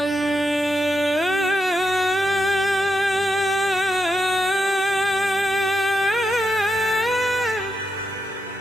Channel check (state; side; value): normal; both; correlation 0.84